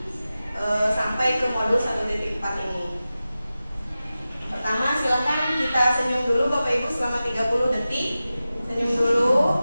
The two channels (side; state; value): both; inverted; correlation -0.95